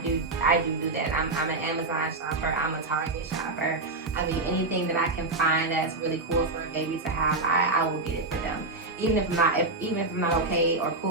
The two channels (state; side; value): quieter; left; 3.3 dB